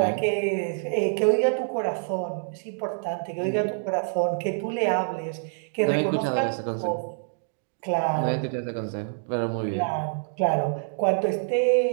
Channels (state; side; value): silent; left; digital silence